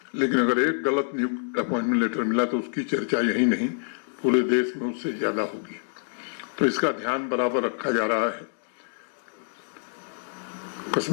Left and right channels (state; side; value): silent; right; digital silence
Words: लेकिन अगर एक गलत नियुक्त अपॉइंटमेंट लेटर मिला तो उसकी चर्चा यही नहीं पूरे देश में उससे ज्यादा होगी। तो इसका ध्यान बराबर रखा जा रहा है।